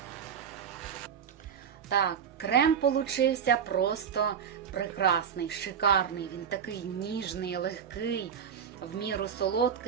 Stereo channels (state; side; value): quieter; left; 7.9 dB